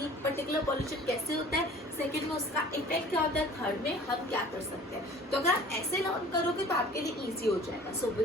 ये पर्टिकुलर पोल्यूशन कैसे होता है, सेकंड में उसका इफेक्ट क्या होता है, थर्ड में हम क्या कर सकते हैं। तो अगर आप ऐसे लर्न करोगे तो आपके लिए इजी हो जाएगा। So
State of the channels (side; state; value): both; normal; correlation 0.47